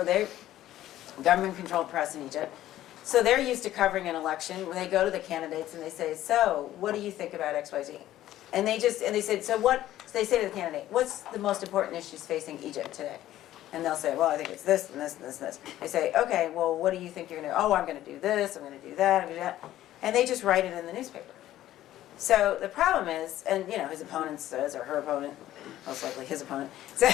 they're government-controlled press in Egypt, so they're used to covering an election. When they go to the candidates and they say, so, what do you think about XYZ? And they said, so they say to the candidate, what's the most important issues facing Egypt today? And they'll say, well, I think it's this and this and this and this. They say, okay, well, what do you think you're going to do? Oh, I'm going to do this, I'm going to do that, I'm going to do that. And they just write it in the newspaper. So the problem is, and you know, his opponent says, or her opponent, most likely his opponent,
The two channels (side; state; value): right; quieter; 13.6 dB